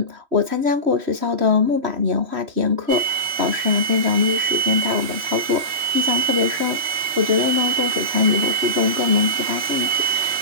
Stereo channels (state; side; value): late; left; 3.1 ms